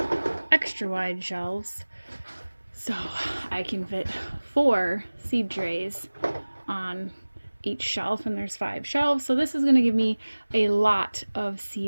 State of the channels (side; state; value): both; inverted; correlation -1.00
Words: extra wide shelves so I can fit 4 seed trays on each shelf, and there's 5 shelves, so this is going to give me a lot of